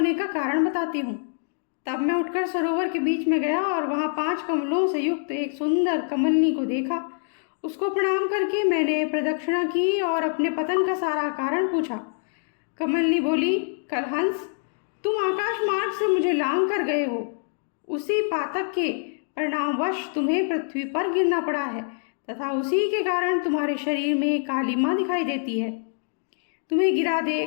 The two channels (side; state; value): right; silent; digital silence